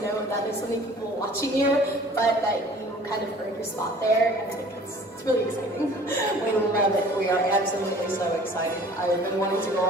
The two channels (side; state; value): both; normal; correlation 0.49